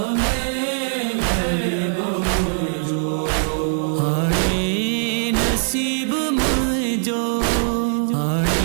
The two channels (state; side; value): silent; left; digital silence